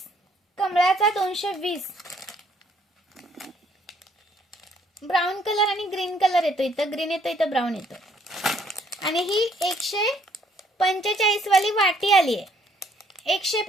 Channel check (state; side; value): normal; both; correlation 0.65